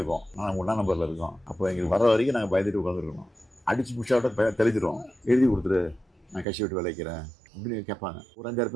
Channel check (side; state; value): left; drops out; at 6.5 s